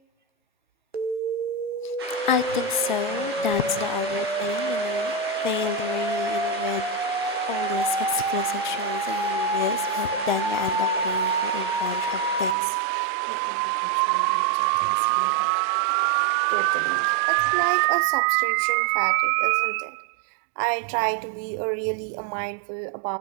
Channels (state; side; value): drops out; left; at 12.6 s